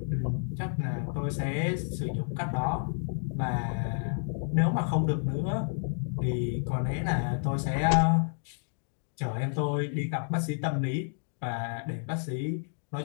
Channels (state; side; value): silent; right; 58 dB below the other